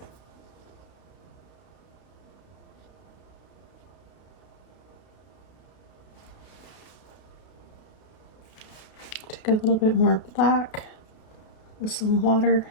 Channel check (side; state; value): right; late; 32 ms